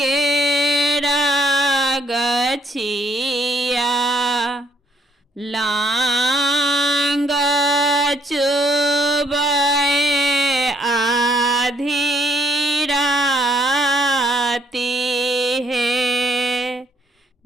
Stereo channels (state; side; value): normal; both; correlation 0.68